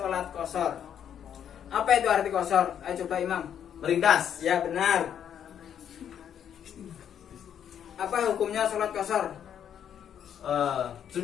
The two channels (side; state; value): right; quieter; 9.1 dB